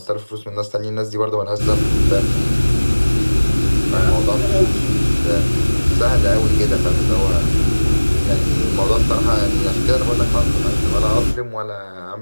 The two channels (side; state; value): both; inverted; correlation -1.00